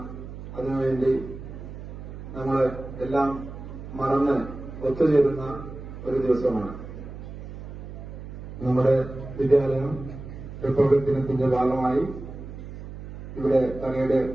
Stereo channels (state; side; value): noise; right; hum, 11 dB below the sound